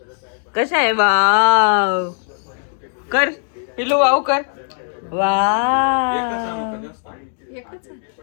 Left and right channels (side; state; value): right; silent; digital silence